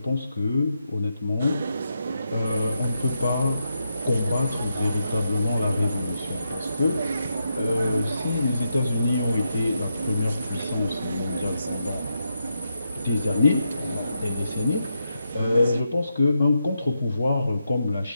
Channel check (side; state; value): both; inverted; correlation -0.84